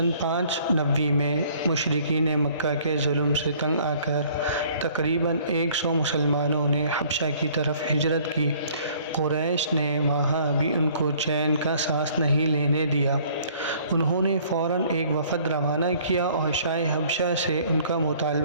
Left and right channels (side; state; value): both; inverted; correlation -0.57